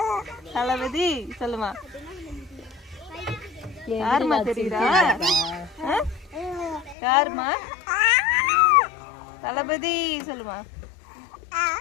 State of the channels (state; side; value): drops out; right; at 7.0 s